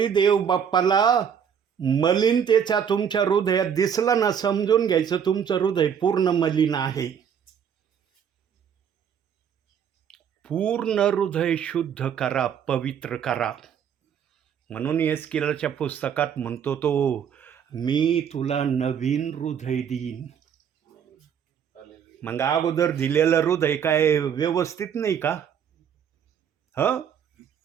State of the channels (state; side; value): quieter; left; 8.0 dB